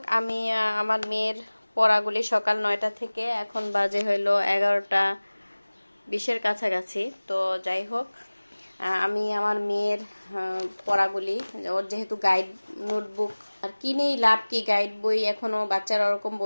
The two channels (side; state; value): both; inverted; correlation -1.00